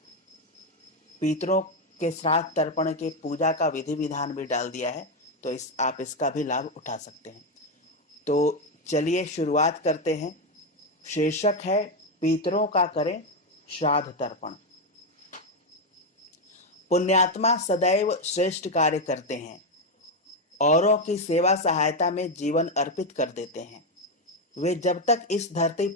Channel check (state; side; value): normal; both; correlation 0.06